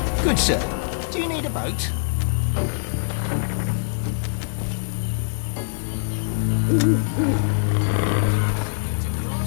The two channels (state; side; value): silent; right; digital silence